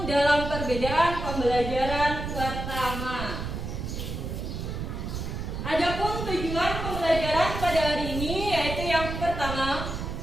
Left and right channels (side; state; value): right; noise; rumble, 5 dB below the sound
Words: dalam perbedaan, pembelajaran pertama. Adapun tujuan pembelajaran pada hari ini yaitu yang pertama,